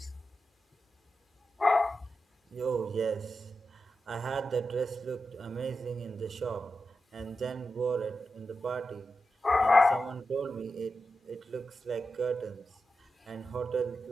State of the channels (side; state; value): both; normal; correlation 0.90